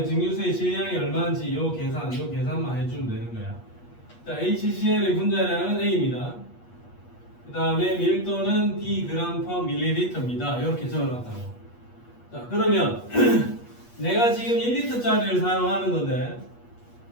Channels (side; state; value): right; late; 8.4 ms